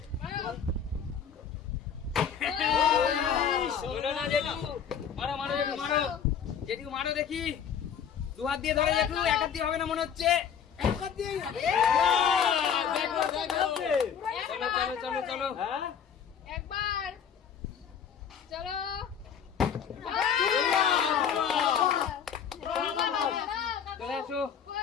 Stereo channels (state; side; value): quieter; right; 7.7 dB